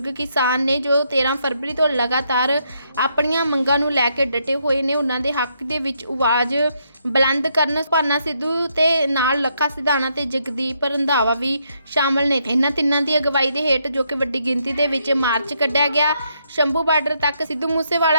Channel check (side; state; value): both; inverted; correlation -0.76